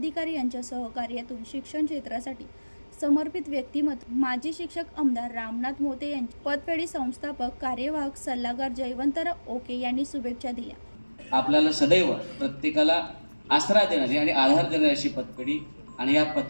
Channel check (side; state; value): both; inverted; correlation -1.00